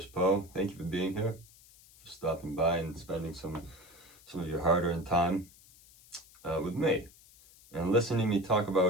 Poe. Thank you for being here, for stopping by and spending some of your hard-earned time with me and listening to me talk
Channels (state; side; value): noise; left; hiss, 24 dB below the sound